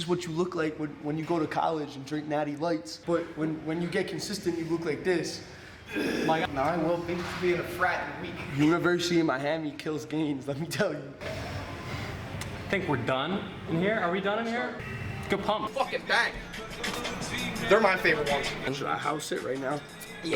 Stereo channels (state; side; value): identical; both; correlation 1.00